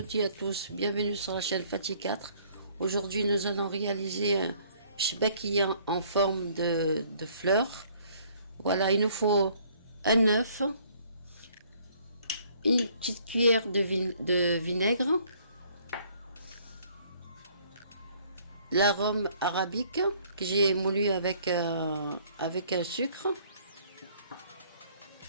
toutes et à tous, bienvenue sur la chaîne Fatih 4. Aujourd'hui nous allons réaliser un chbakia en forme de fleurs. Voilà, il nous faut un œuf, une petite cuillère de vinaigre, l'arôme arabique que j'ai moulu avec un sucre,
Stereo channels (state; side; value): inverted; both; correlation -0.60